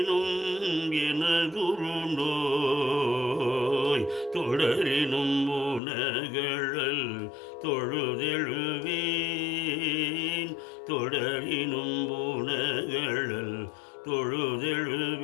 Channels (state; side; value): drops out; right; at 5.8 s